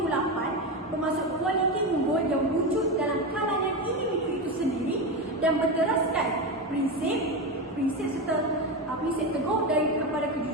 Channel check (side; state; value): both; normal; correlation 0.17